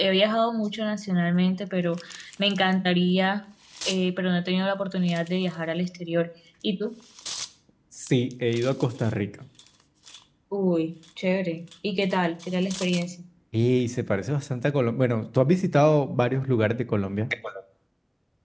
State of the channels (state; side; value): identical; both; correlation 1.00